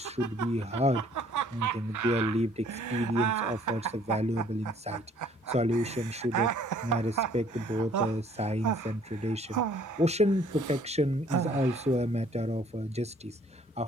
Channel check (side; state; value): both; normal; correlation 0.59